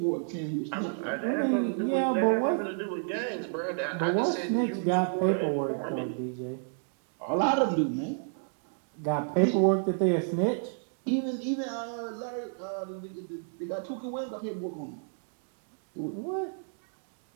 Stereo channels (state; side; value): silent; left; digital silence